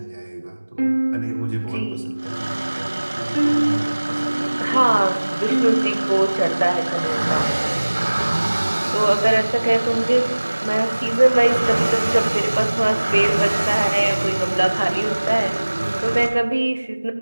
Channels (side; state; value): both; inverted; correlation -1.00